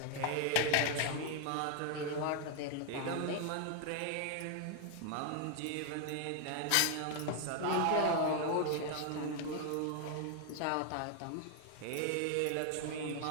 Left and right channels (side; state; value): both; different; correlation 0.00